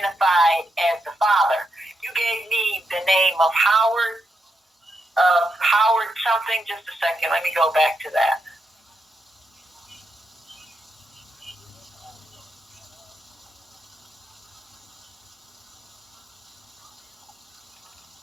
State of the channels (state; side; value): normal; both; correlation 0.82